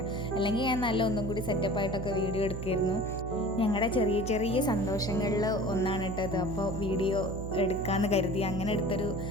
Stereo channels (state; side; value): noise; right; hum, 6 dB below the sound